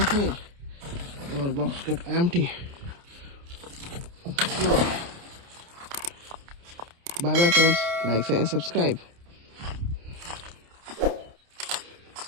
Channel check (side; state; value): left; late; 29 ms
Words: hey. Our box got empty. Wow. Bye bye, friends. Like, share, and subscribe.